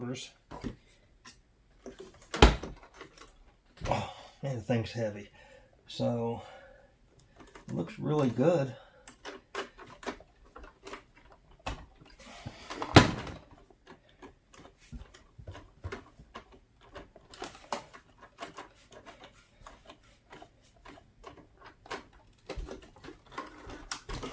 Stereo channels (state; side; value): identical; both; correlation 1.00